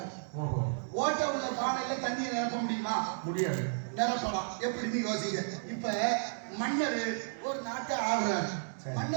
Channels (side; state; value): left; silent; digital silence